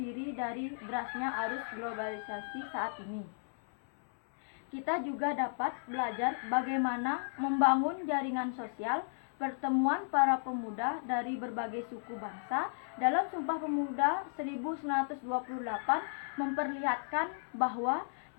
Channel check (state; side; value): silent; right; 55 dB below the other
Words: dari derasnya arus globalisasi saat ini. Kita juga dapat belajar bagaimana membangun jaringan sosial pertemuan para pemuda dari berbagai suku bangsa. Dalam Sumpah Pemuda 1928 memperlihatkan bahwa